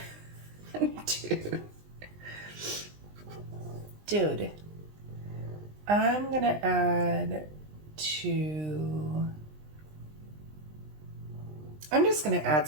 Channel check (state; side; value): late; left; 20 ms